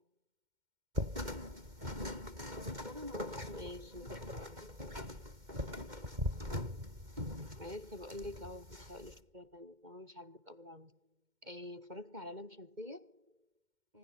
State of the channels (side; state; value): left; late; 2.1 ms